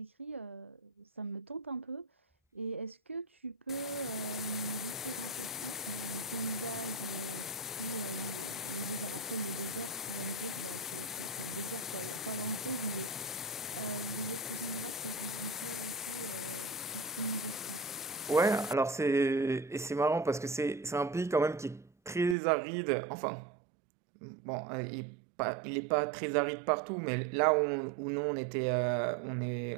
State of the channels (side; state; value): left; drops out; at 22.4 s